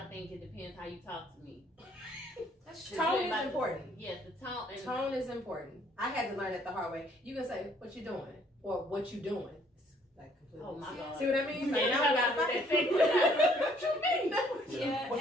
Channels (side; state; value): both; normal; correlation 0.63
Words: think it depends how you talk to me. That's true. Tone is important. Yes, the tone. And Tone is important. I had to learn it the hard way. You can say, what you doing? Or what you doing? It's like completely. Oh my God. See what I mean? Like, Yeah, now we gotta that's fight. what What you mean? Yeah,